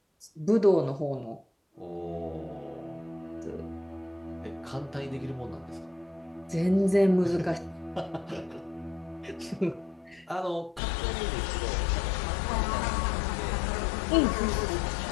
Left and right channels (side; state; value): right; drops out; at 10.8 s